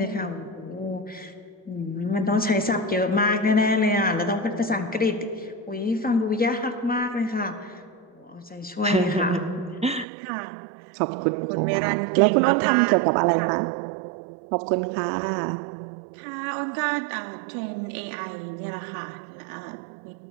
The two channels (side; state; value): left; drops out; at 10.1 s